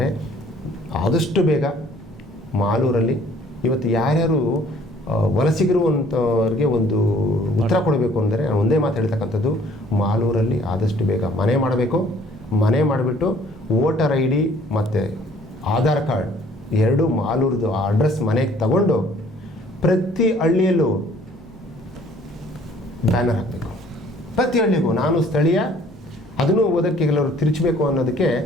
ಆದಷ್ಟು ಬೇಗ ಮಾಲೂರಲ್ಲಿ ಇವತ್ತು ಯಾರ್ಯಾರು ವಲಸಿಗರು ಅಂತವ್ರಿಗೆ ಒಂದು ಉತ್ತರ ಕೊಡಬೇಕು ಅಂದರೆ, ನಾನು ಒಂದೇ ಮಾತು ಹೇಳ್ತಕ್ಕಂಥದ್ದು, ಮಾಲೂರಲ್ಲಿ ಆದಷ್ಟು ಬೇಗ ಮನೆ ಮಾಡಬೇಕು. ಮನೆ ಮಾಡಿಬಿಟ್ಟು ವೋಟರ್ ID ಮತ್ತು ಆಧಾರ್ ಕಾರ್ಡ್ 2 ಮಾಲೂರದು ಆ ಅಡ್ರೆಸ್ ಮನೆಗೆ ತಗೊಂಡು ಪ್ರತಿ ಹಳ್ಳಿಯಲ್ಲೂ ಬ್ಯಾನರ್ ಹಾಕಬೇಕು. ಪ್ರತಿ ಹಳ್ಳಿಗೂ ನಾನು ಸ್ಥಳೀಯ, ಅದನ್ನು ಓದೋಕ್ಕೆ ಕೆಲವರು ತಿರುಚಬೇಕು ಅನ್ನೋದಕ್ಕೆ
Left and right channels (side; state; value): both; normal; correlation 0.57